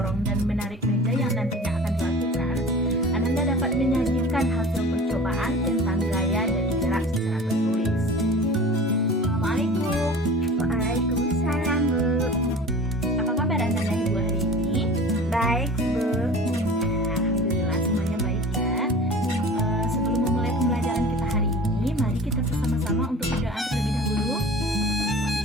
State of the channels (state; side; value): normal; both; correlation 0.40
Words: dan menarik meja yang nantinya akan dilakukan, Ananda dapat menyajikan hasil percobaan tentang gaya dan gerak secara tertulis. Assalamualaikum. Waalaikumsalam, Bu. Apa kabar Anda dan Ibu hari ini? Baik, Bu. Alhamdulillah semuanya baik ya. Sebelum memulai pembelajaran kita hari ini, mari kita bersama-sama untuk berdoa terlebih dahulu.